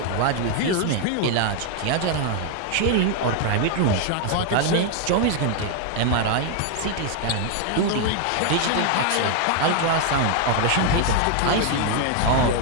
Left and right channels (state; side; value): different; both; correlation 0.00